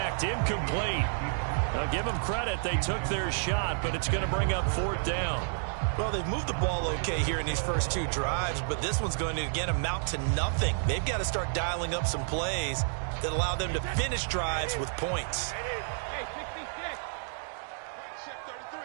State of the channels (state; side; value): silent; left; digital silence